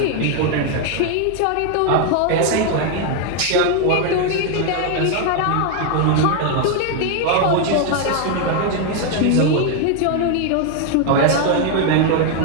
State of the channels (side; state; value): both; different; correlation 0.01